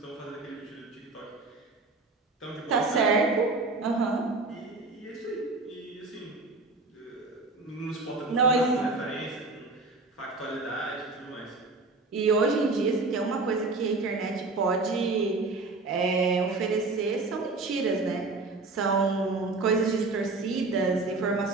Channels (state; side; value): quieter; left; 3.5 dB